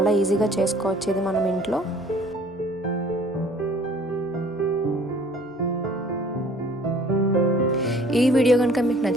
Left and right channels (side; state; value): both; normal; correlation 0.53